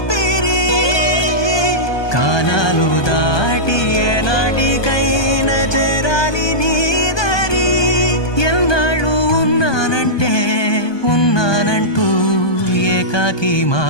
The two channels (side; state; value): right; late; 1.2 ms